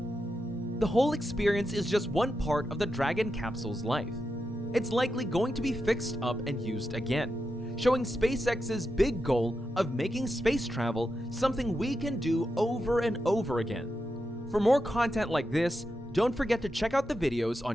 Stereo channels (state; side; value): normal; both; correlation 0.87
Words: The whole experience is just one part of the Dragon Capsule's life. It's likely going to be fixed up and used again, showing SpaceX's big goal of making space travel something we can do over and over again. For more content like this, don't forget to check out the videos